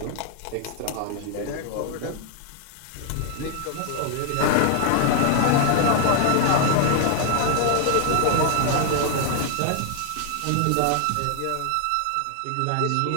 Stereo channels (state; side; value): different; both; correlation 0.00